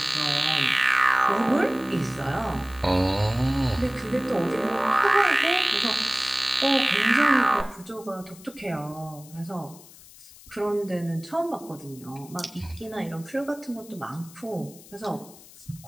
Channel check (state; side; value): noise; left; hiss, 21 dB below the sound